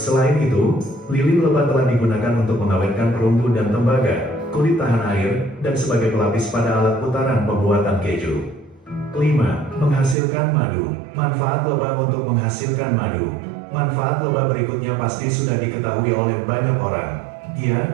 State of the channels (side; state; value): left; drops out; at 10.2 s